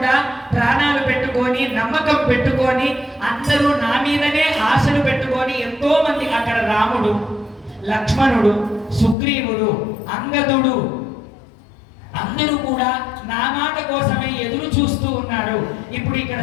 ప్రాణాలు పెట్టుకొని, నమ్మకం పెట్టుకొని, అందరూ నా మీదనే ఆశలు పెట్టుకొని ఎంతో మంది అక్కడ రాముడు, లక్ష్మణుడు, సుగ్రీవుడు, అంగదుడు అందరూ కూడా నా మాట కోసమే ఎదురు చూస్తూ ఉన్నారు. ఇప్పుడు ఇక్కడ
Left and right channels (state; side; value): drops out; right; at 9.2 s